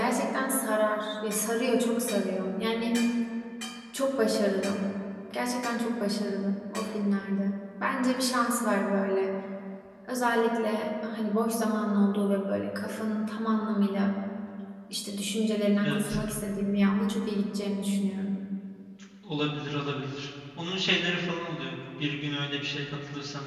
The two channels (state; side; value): identical; both; correlation 1.00